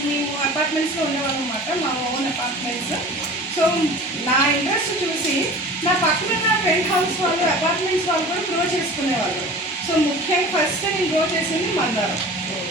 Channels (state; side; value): normal; both; correlation 0.40